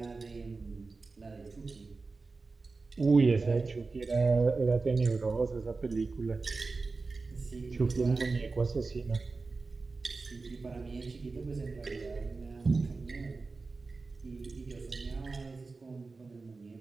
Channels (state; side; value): quieter; left; 3.9 dB